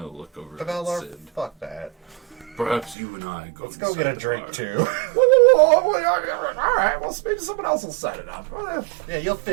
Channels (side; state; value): left; drops out; at 3.0 s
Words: look over at Beldar, Sid. fuck that. Perhaps you and I go. Let's go get a inside the drink bar. too. All right. Well, maybe someone else will set it up. Yeah, you'll